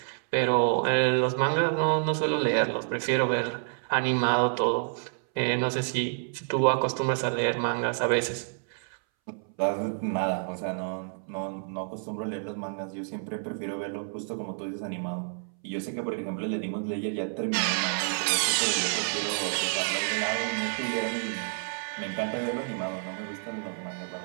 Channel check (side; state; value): left; silent; 59 dB below the other